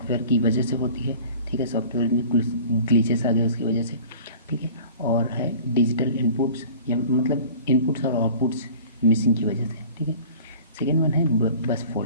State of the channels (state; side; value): inverted; both; correlation -0.44